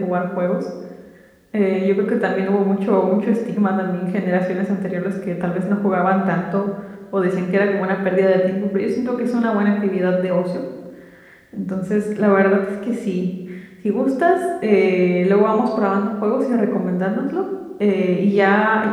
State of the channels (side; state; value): both; identical; correlation 1.00